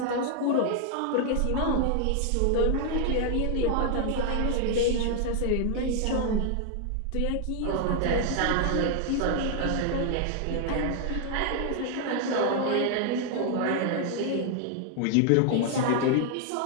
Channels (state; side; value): different; both; correlation 0.00